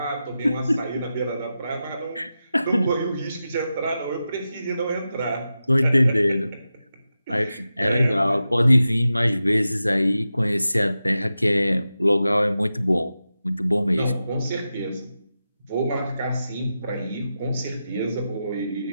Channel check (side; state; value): both; inverted; correlation -0.91